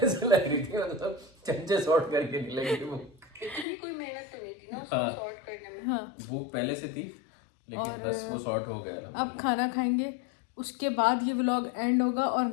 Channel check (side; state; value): right; drops out; at 3.7 s